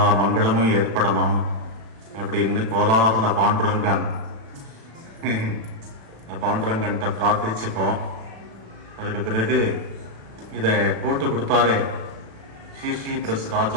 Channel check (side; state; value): left; late; 36 ms